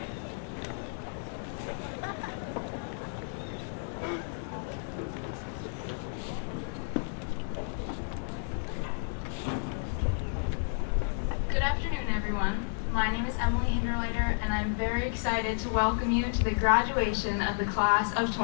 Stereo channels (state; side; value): silent; right; digital silence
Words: Good afternoon, everyone. My name is Emily Hinderleiter, and I'm very excited to welcome you to the graduation of the class of